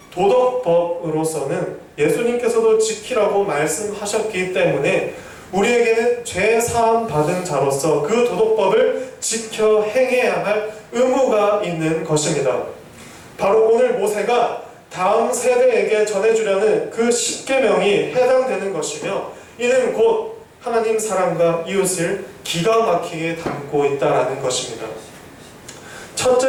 도덕법으로서는 예수님께서도 지키라고 말씀하셨기 때문에 우리에게는 죄 사함 받은 자로서 그 도덕법을 지켜 행해야 할 의무가 있는 것입니다. 바로 오늘 모세가 다음 세대에게 전해주려는 그 십계명이 해당되는 것이며 이는 곧 하나님 사랑과 이웃을 기가 막히게 담고 있다라는 것입니다.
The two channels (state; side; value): identical; both; correlation 1.00